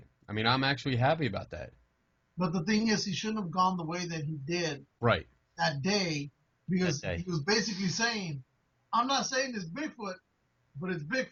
I mean, I'm actually happy about that. But the thing is, he shouldn't have gone the way that he did right that day, because he was basically saying, I'm not saying it's Bigfoot, but it's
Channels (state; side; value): identical; both; correlation 1.00